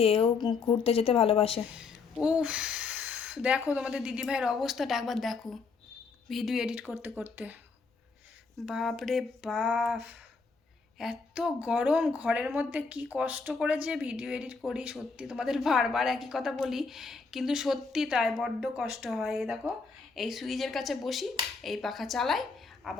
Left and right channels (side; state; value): right; quieter; 4.7 dB